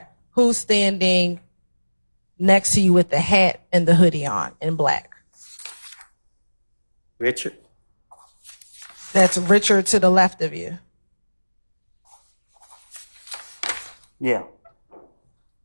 Who's standing next to you with the hat and the hoodie on in black? Richard. That's Richard to the left of you. Yeah.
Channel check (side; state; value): both; inverted; correlation -1.00